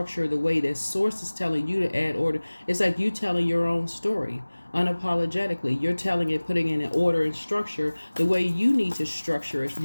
the way that source is telling you to add order. It's like you telling your own story unapologetically. You're telling it, putting in an order and structure the way you need to structure it.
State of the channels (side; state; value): both; inverted; correlation -1.00